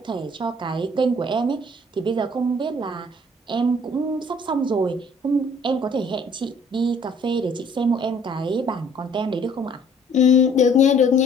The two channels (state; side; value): normal; both; correlation 0.58